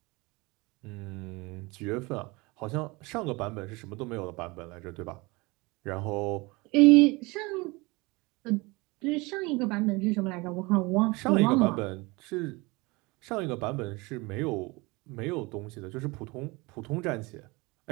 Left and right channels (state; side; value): quieter; left; 24.7 dB